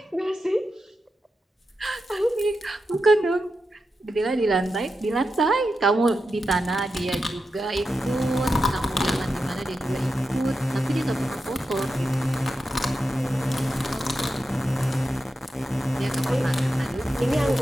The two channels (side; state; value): both; normal; correlation 0.89